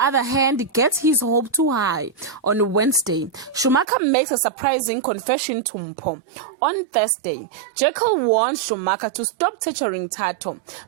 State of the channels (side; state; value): left; drops out; at 3.9 s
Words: hand, gets his hope too high. On Wednesday, Schumacher makes a surprising confession to Mpho. On Thursday, Jekyll warns Schumacher to stop torturing Tato.